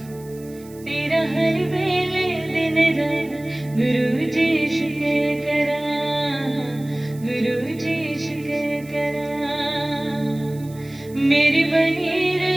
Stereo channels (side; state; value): right; noise; hiss, 23 dB below the sound